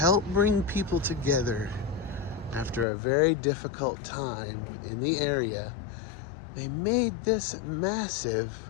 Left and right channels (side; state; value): right; drops out; at 2.9 s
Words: bring people together after a very difficult time in the area. They made this massive